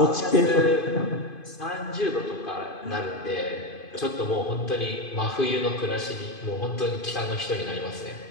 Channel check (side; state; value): right; late; 2.5 ms